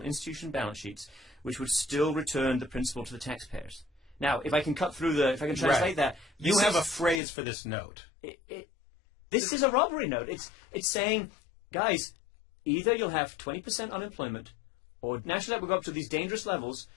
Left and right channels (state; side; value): drops out; right; at 7.2 s